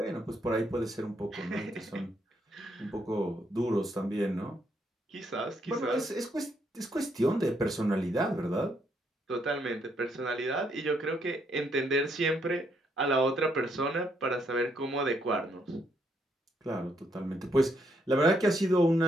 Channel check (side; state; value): both; normal; correlation 0.74